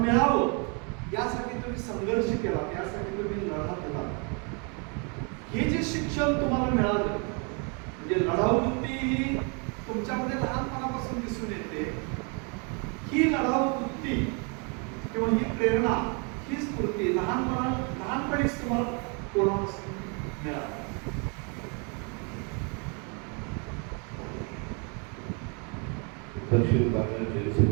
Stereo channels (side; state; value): left; quieter; 35.4 dB